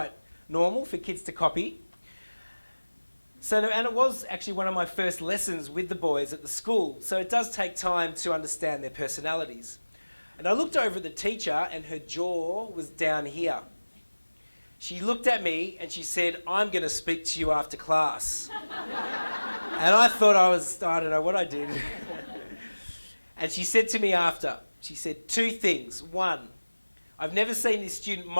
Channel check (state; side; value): inverted; both; correlation -1.00